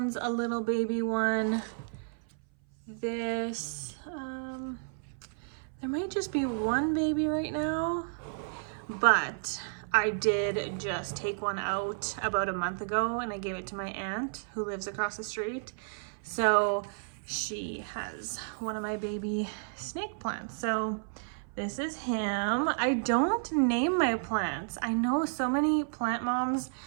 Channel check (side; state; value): left; silent; 57 dB below the other